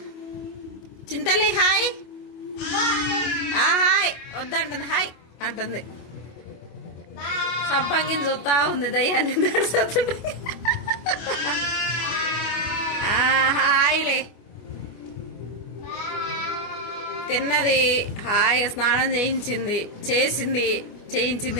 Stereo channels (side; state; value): right; late; 25 ms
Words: చింతలి హాయ్ హాయ్ వద్దంటుంది హాయ్ అంటుంది సంపంగిని చూస్తా ఉంది దయ్యాన్ని హాయ్లే తిన్నది హాయిగా స్నానం